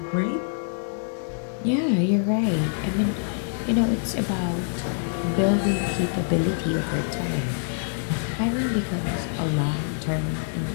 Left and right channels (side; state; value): right; silent; 61 dB below the other